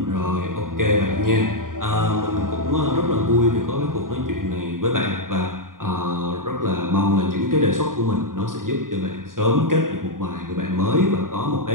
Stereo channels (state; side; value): late; left; 0.90 ms